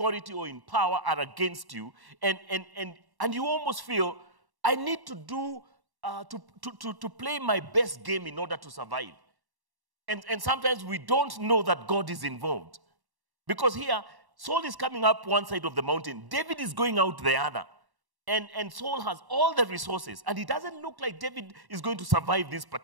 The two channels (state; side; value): late; left; 1.1 ms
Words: or in power are against you, and you almost feel, I need to do to play my best game in order to survive. And sometimes we don't know that God is involved. Because here, Saul is coming up one side of the mountain, David is going out the other. And Saul has all the resources, and it doesn't look like David is going to survive this